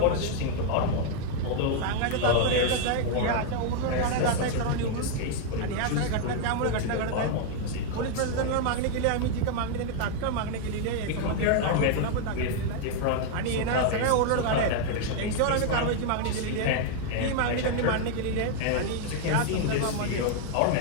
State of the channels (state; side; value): different; both; correlation 0.00